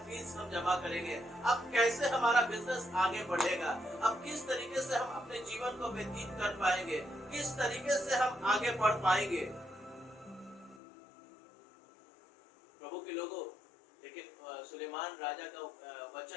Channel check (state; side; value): drops out; right; at 10.8 s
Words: फीस हम जमा करेंगे, अब कैसे हमारा बिजनेस आगे बढ़ेगा, अब किस तरीके से हम अपने जीवन को व्यतीत कर पाएंगे, किस तरीके से हम आगे बढ़ पाएंगे। प्रभु के लोगों, लेकिन सुलेमान राजा का